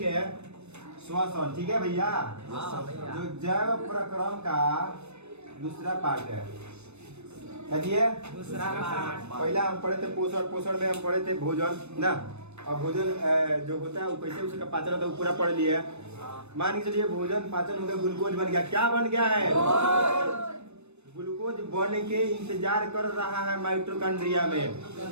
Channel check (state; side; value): late; left; 0.81 ms